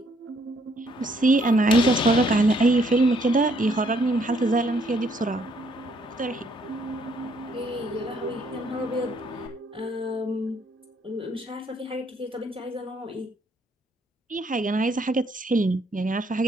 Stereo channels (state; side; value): normal; both; correlation 0.68